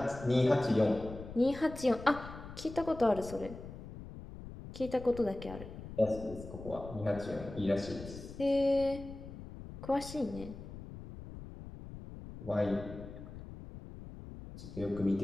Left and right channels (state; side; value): noise; left; rumble, 13 dB below the sound